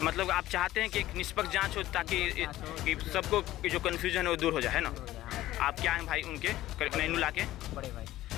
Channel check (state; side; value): quieter; right; 15.1 dB